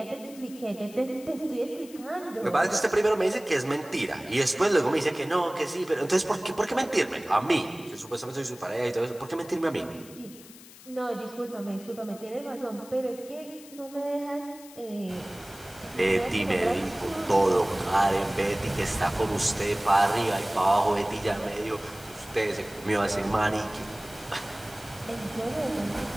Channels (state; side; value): noise; left; hiss, 20 dB below the sound